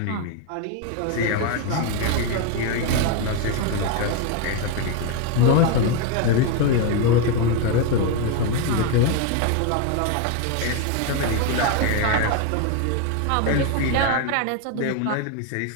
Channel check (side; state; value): both; different; correlation 0.01